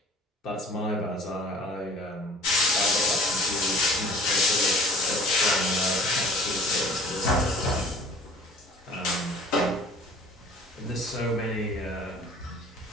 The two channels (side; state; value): both; normal; correlation 0.47